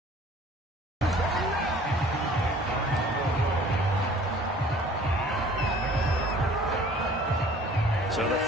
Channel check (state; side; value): normal; both; correlation 0.51